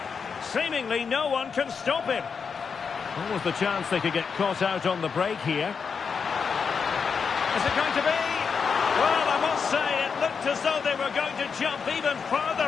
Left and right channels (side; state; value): right; quieter; 5.9 dB